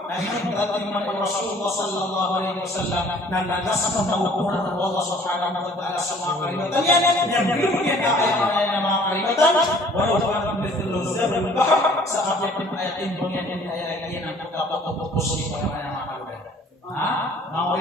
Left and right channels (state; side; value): normal; both; correlation 0.54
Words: Nah ini berarti Rasulullah sallallahu alaihi wasallam dan nasabah mengukuran Allah subhanahu wa ta'ala semua kalimatnya yang belum kita ayat nama kalimatan walau kanat mithlu zabal al-bahr saat yang ayat ini ayat ini nanti dapat fokus di pada nama kalimatan. Mau